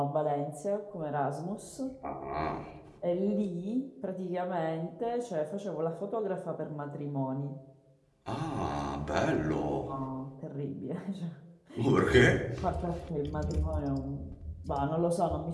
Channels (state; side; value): identical; both; correlation 1.00